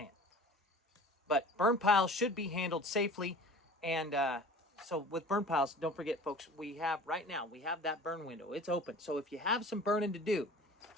But burn piles should be handled safely, and so with burn piles, don't forget, folks, we have that burn window. It's open. So if you have some burning to do,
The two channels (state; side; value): normal; both; correlation 0.42